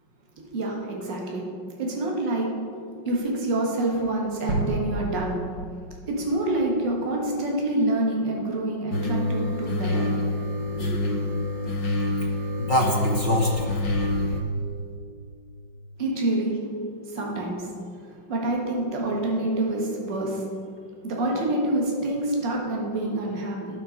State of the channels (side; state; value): right; late; 5.5 ms